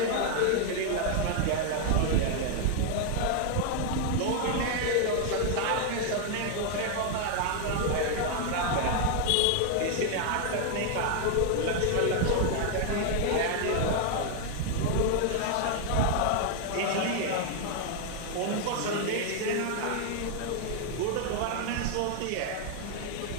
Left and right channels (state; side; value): different; both; correlation 0.00